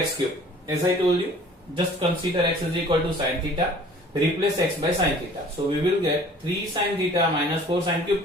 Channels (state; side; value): normal; both; correlation 0.50